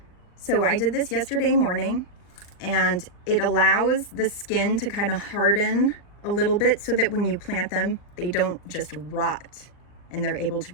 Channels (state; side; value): late; right; 39 ms